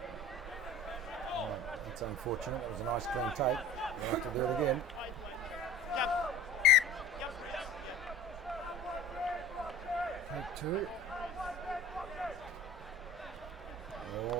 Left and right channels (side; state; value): both; normal; correlation 0.42